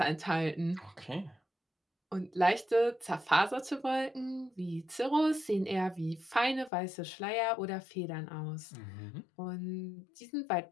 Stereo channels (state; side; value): drops out; right; at 6.7 s